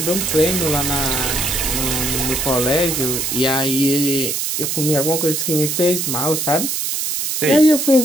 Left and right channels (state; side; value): noise; right; hiss, 1 dB below the sound